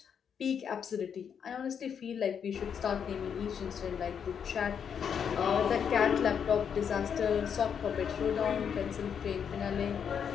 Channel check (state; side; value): quieter; right; 7.5 dB